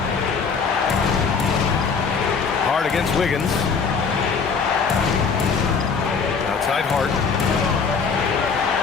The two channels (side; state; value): right; quieter; 5.5 dB